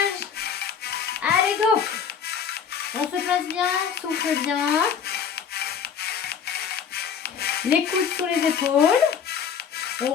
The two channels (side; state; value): right; quieter; 7.3 dB